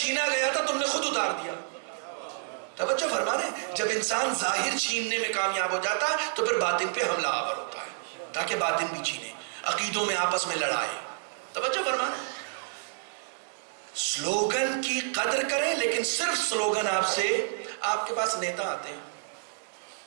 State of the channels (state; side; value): silent; left; digital silence